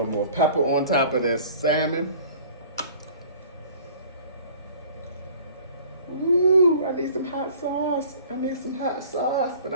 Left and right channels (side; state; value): both; inverted; correlation -0.49